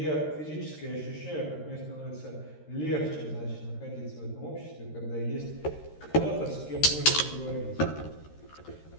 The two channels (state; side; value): late; right; 13 ms